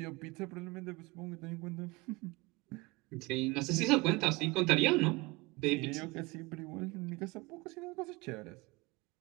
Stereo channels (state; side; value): quieter; left; 23.7 dB